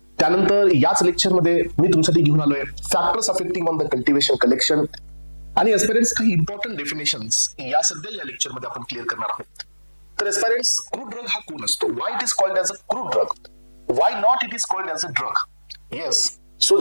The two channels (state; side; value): inverted; both; correlation -1.00